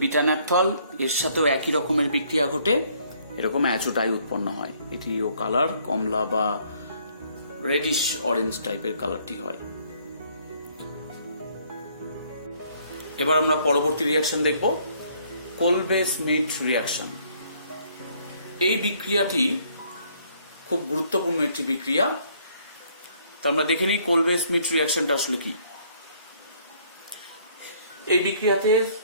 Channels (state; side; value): inverted; both; correlation -0.64